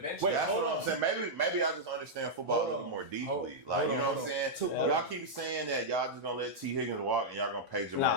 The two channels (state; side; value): normal; both; correlation -0.06